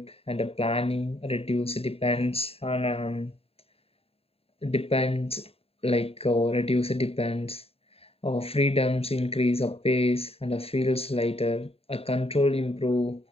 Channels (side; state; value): right; late; 0.28 ms